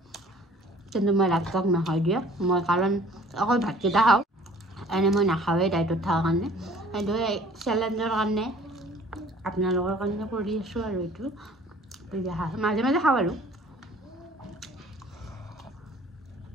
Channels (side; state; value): both; normal; correlation 0.51